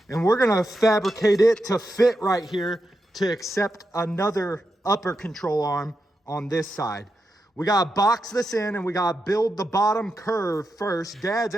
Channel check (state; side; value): normal; both; correlation 0.87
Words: and we're gonna fabricate it to fit right here to accept another upper control arm on this side. We gotta box this in and we gotta build the bottom curve first. Dad's